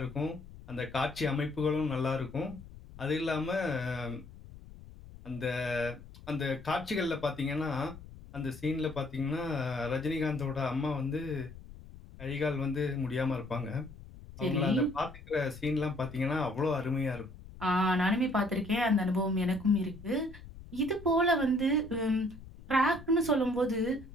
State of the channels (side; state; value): left; noise; rumble, 17 dB below the sound